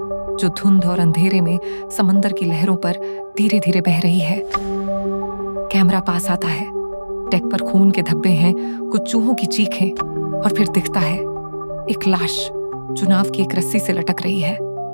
धुंध और अंधेरे में समंदर की लहरों पर धीरे धीरे बह रही है। कैमरा पास आता है, डेक पर खून के धब्बे हैं, कुछ चूहों की चीखें, और फिर दिखता है एक लाश जो नाव की एक रस्सी से लटक रही है।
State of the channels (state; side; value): inverted; both; correlation -1.00